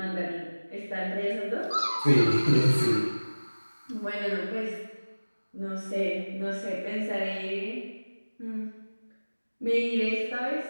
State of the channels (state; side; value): inverted; both; correlation -1.00